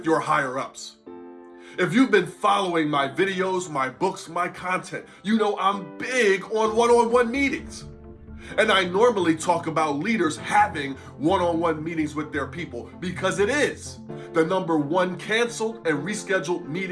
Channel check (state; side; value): identical; both; correlation 1.00